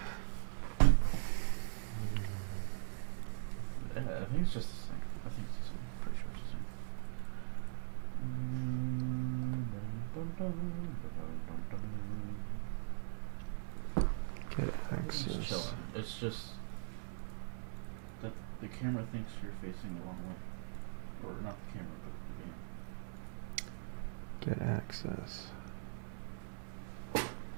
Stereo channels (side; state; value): left; silent; digital silence